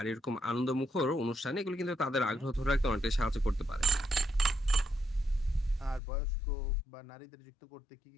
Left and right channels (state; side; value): drops out; right; at 6.0 s